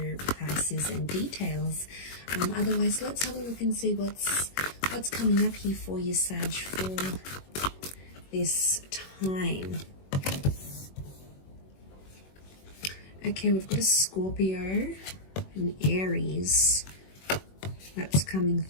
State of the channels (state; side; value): late; right; 21 ms